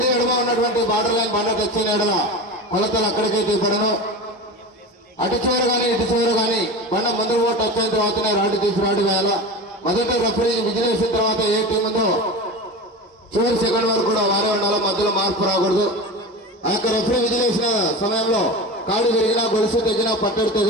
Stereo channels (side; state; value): both; normal; correlation 0.28